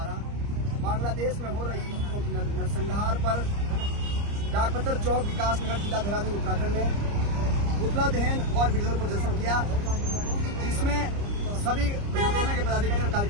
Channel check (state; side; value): late; left; 30 ms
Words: बांग्लादेश में हो रही नरसंहार पर डाकपत्र चौक विकास नगर जिला देहरादून उत्तराखंड में पुतला दहन और विरोध प्रदर्शन किया, जिसमें सभी सेना के पदाधिकारी और